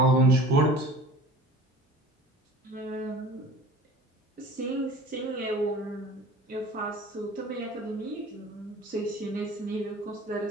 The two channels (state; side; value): normal; both; correlation 0.42